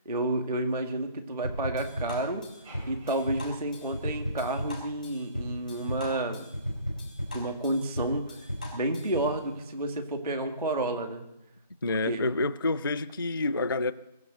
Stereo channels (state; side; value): inverted; both; correlation -0.50